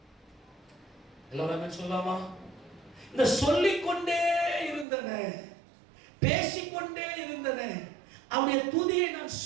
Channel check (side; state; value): left; drops out; at 4.9 s